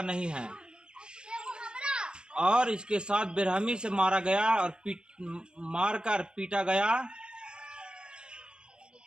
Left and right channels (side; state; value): left; late; 0.049 ms